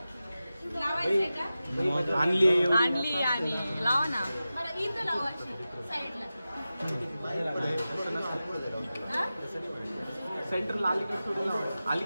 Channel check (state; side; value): inverted; both; correlation -0.94